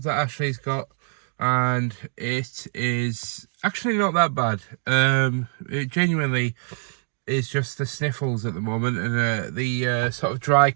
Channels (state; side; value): silent; left; 62 dB below the other